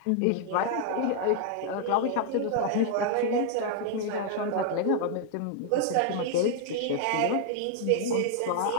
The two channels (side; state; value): both; different; correlation 0.00